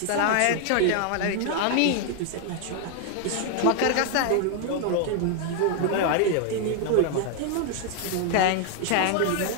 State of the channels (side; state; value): both; different; correlation 0.00